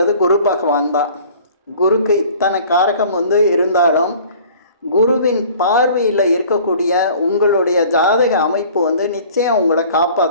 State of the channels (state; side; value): inverted; both; correlation -0.49